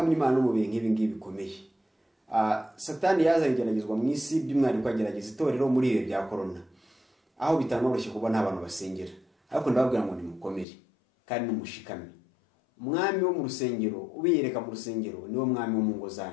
Imana no mu bihe nk'ibi ngibi bikomeye. Satani yazanye igeragezwa mu isi, by'umwihariko agerageza itorero muri ibi bya corona, aho bitanoroshye kuba nta bantu basengera. Ariko ndababwira ngo nimukomere kandi numushikame. Umwami wo mu rusengero, ubiyereka mu rusengero, niwo mwami wo mu ngo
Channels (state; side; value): drops out; right; at 10.7 s